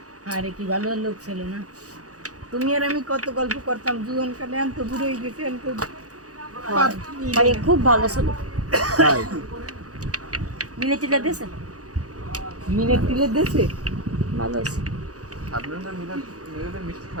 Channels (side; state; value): left; late; 0.67 ms